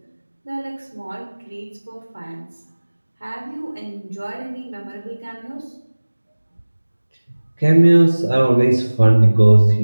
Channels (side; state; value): both; inverted; correlation -1.00